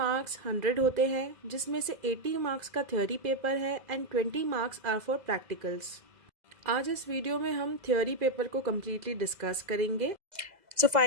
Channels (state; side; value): late; left; 2.0 ms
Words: 100 होते हैं, जिसमें से 80 मार्क्स का थ्योरी पेपर है and 20 marks are for practicals. आज इस वीडियो में हम थ्योरी पेपर को कम्प्लीटली डिस्कस करेंगे। सो